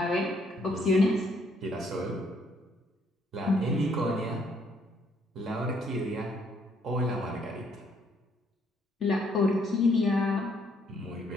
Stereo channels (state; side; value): normal; both; correlation 0.68